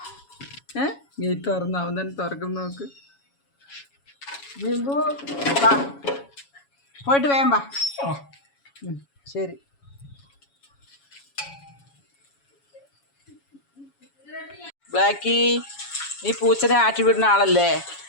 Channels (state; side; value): late; right; 7.2 ms